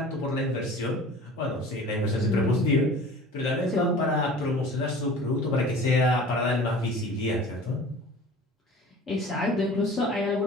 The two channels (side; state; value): both; normal; correlation 0.42